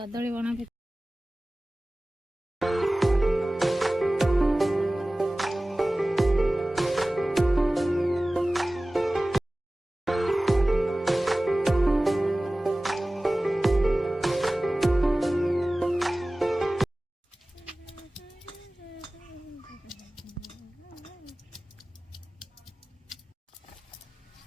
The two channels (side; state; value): both; normal; correlation 0.98